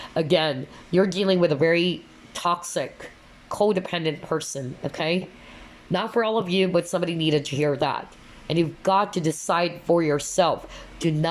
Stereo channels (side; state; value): both; identical; correlation 1.00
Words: Again, you're dealing with a very toxic, codependent person, okay? Not for all of you, but somebody needed to hear that. And you've got to decide for yourself. Do